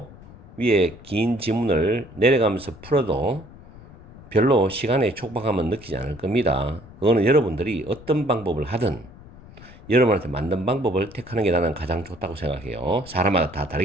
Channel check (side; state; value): left; noise; rumble, 20 dB below the sound